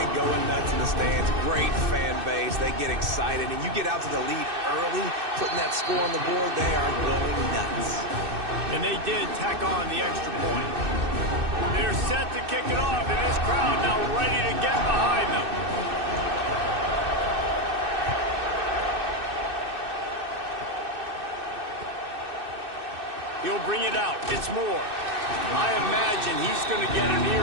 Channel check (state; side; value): late; left; 2.6 ms